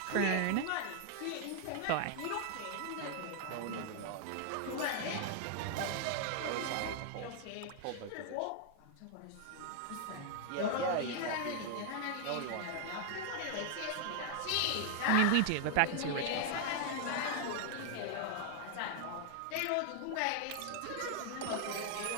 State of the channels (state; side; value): different; both; correlation 0.00